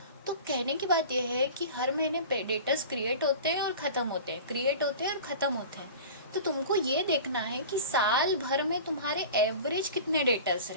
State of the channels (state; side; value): inverted; both; correlation -0.37